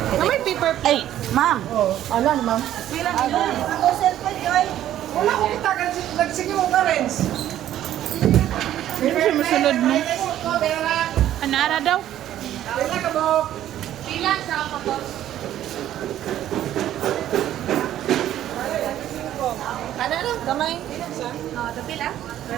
May paper plate. Ay, ma'am. Oh, alam, ma'am. Pila nila? Ako cellphone, Joy. Wala ko kita. Nagsige mo ka, Renz. Ano siya masunod mo? Anara daw? Pila ka mo. Pila sa kapos. Ano lang, gamay. Tapila?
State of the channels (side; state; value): left; quieter; 12.1 dB